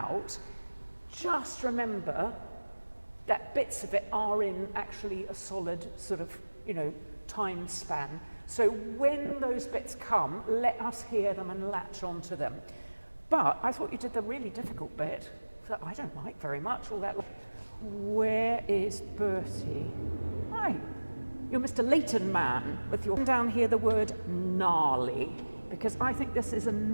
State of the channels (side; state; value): both; inverted; correlation -1.00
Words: just remember that bits of it are in actually a solid sort of, you know, time span. So when those bits come, let us hear them and latch onto them. But I thought you did the really difficult bit that I don't like very much, all that. Where is Bertie? Hi, you're Mr. Leighton man with your down here the word gnarly, because I think this is a